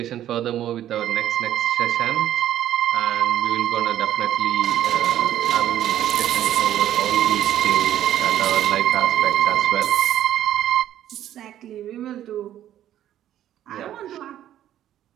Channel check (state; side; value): quieter; left; 11.8 dB